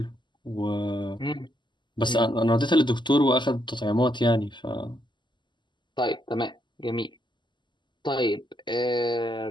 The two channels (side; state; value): right; late; 0.22 ms